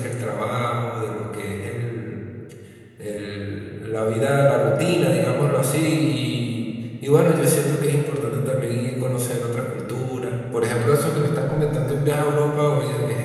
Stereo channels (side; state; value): both; identical; correlation 1.00